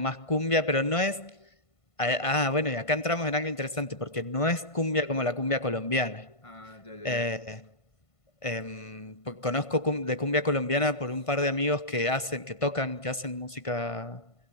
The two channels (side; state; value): right; late; 1.5 ms